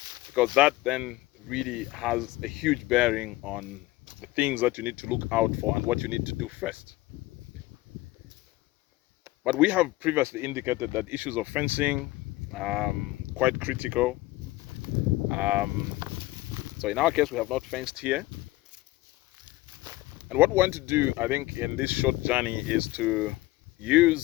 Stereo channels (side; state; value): right; quieter; 18.7 dB